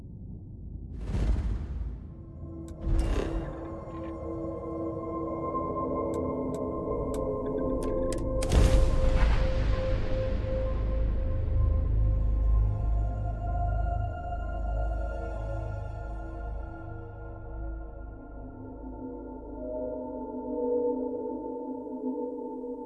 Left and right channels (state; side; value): identical; both; correlation 1.00